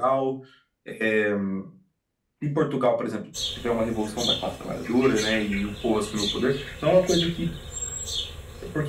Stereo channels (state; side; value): identical; both; correlation 1.00